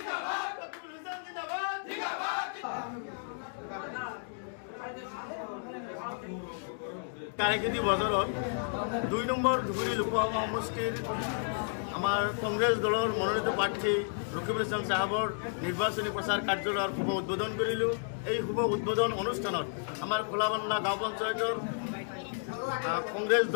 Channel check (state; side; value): silent; right; digital silence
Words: বজাৰত ২ নম্বৰ ধুবুৰী লোকসভা সমষ্টিৰ আমাৰ কংগ্ৰেছ দলৰ মনোনীত প্ৰাৰ্থী ৰকিবুল হাছান সাহেবৰ নিৰ্বাচনী প্ৰচাৰ কাৰ্যালয়ৰ শুভ উদ্বোধন কৰিলোঁ। এই শুভ উদ্বোধন অনুষ্ঠানত আমাৰ খোলাবান্ধা গাঁও পঞ্চায়তৰ কংগ্ৰেছ